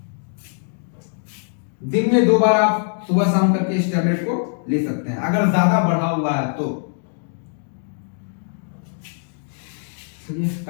दिन में 2 बार आप सुबह शाम करके इस टैबलेट को ले सकते हैं अगर ज्यादा बढ़ा हुआ है तो। ये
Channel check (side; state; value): right; silent; digital silence